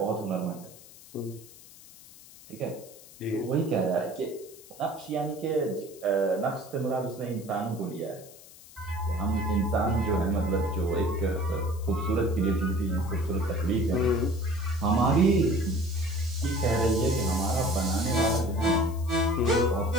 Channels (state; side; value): noise; left; hiss, 20 dB below the sound